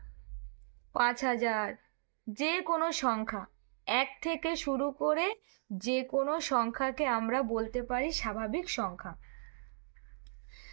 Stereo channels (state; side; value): silent; left; digital silence